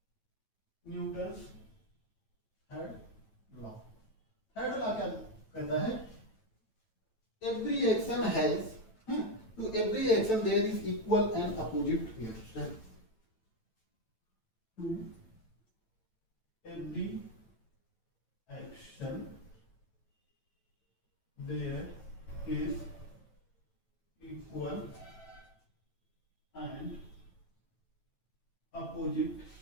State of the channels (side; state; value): right; late; 9.0 ms